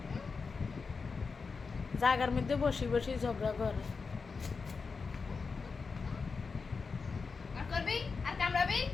জায়গার মধ্যে বসি বসি ঝগড়া করে। আর করবি আর কামড়াবি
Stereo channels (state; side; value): quieter; right; 4.8 dB